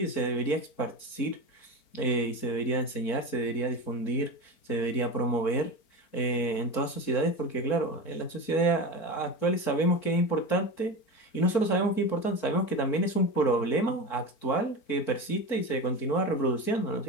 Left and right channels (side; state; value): right; late; 4.4 ms